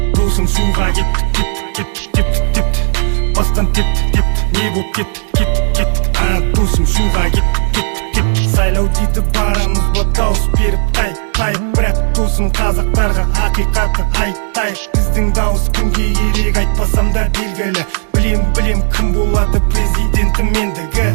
Досым шуға кеттік. Бастан тепті. Не боп кеттік. Досым шуға кеттік. Сайлау дейді барамыз ба дауыс беріп тайып. Бірақ досым қазақтарға ақиқатты айтайық. Біздің дауыс кімге керек айтпасам да белгілі. Білем кім болады президентім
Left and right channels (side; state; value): left; silent; digital silence